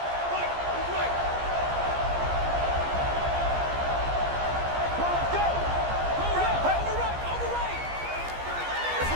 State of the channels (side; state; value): left; late; 15 ms